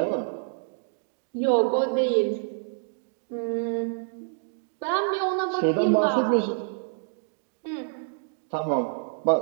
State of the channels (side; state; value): left; silent; digital silence